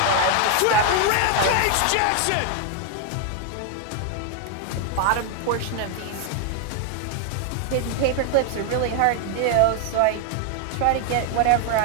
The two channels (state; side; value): different; both; correlation 0.01